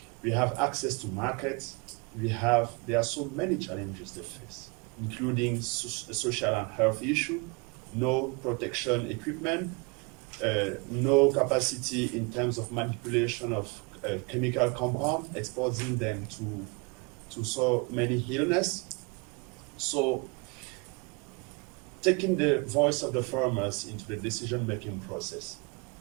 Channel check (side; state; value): left; quieter; 30.7 dB